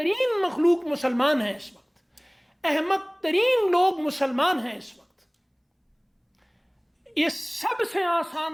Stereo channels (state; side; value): identical; both; correlation 1.00